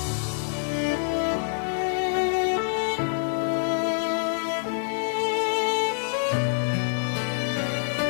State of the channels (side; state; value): right; silent; digital silence